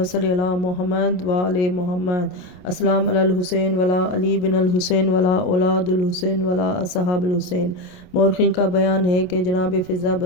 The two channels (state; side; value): late; right; 28 ms